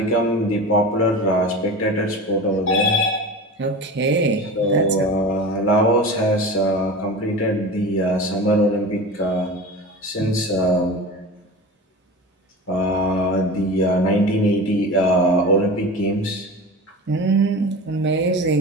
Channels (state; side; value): normal; both; correlation 0.32